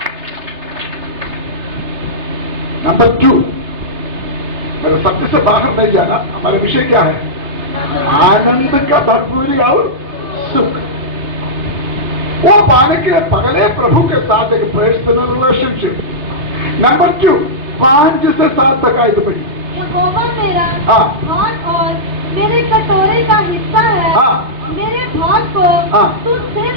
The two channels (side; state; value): left; late; 3.3 ms